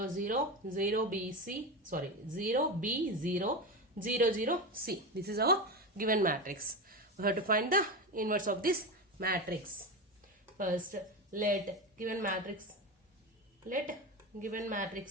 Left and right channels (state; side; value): normal; both; correlation 0.20